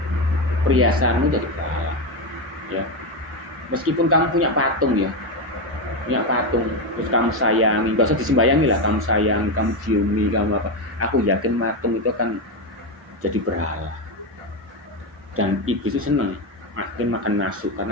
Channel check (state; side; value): normal; both; correlation 0.11